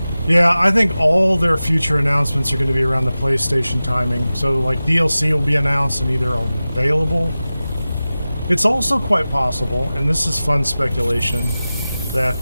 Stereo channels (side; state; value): both; inverted; correlation -0.96